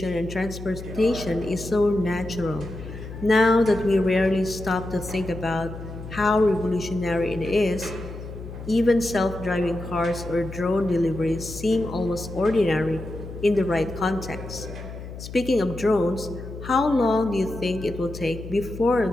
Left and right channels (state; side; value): noise; left; hum, 11 dB below the sound